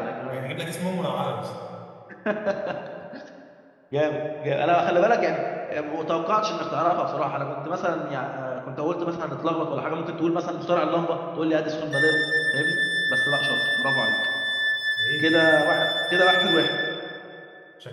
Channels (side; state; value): both; identical; correlation 1.00